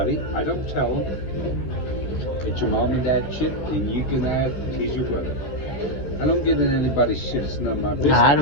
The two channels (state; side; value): late; right; 14 ms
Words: I don't tell them. It's your mom and dad shit, and you can have, he's your brother. I don't get in anybody's shit. It's none of my business. I